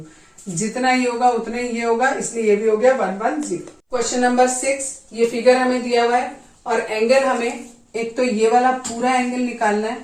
जितना ये होगा उतना ही ये होगा, इसलिए ये भी हो गया 110। क्वेश्चन नंबर 6, ये फिगर हमें दिया हुआ है और एंगल हमें एक तो ये वाला पूरा एंगल निकालना है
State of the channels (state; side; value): identical; both; correlation 1.00